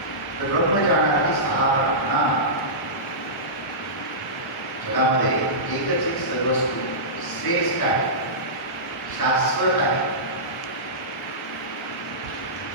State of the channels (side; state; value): both; normal; correlation -0.19